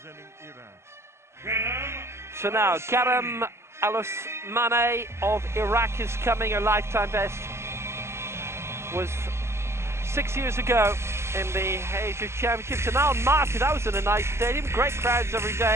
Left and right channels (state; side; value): late; left; 0.13 ms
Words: Iran. So now, Karam Al-Osmani of Iraq is coming. Her lifetime best was 6 years ago in the Asia Championships. And now Marty, that was in a nice stadium. Great crowds every